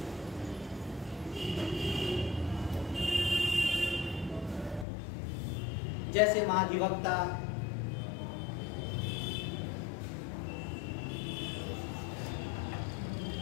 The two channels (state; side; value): drops out; right; at 4.9 s